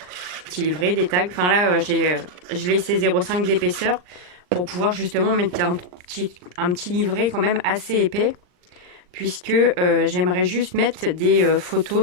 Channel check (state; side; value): late; left; 39 ms